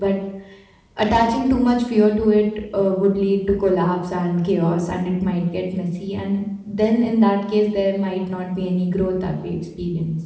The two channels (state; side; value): identical; both; correlation 1.00